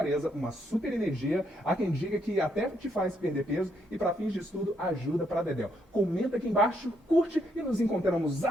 uma super energia. Há quem diga que até te faz perder peso e para fins de estudo ajuda para dedéu. Comenta aqui embaixo, curte e nos encontramos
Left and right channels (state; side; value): normal; both; correlation 0.75